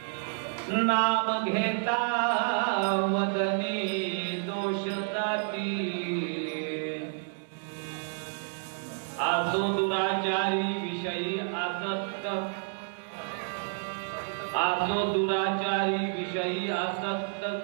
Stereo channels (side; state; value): left; silent; 58 dB below the other